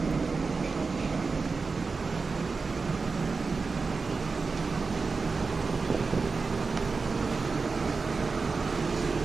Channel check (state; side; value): quieter; left; 4.4 dB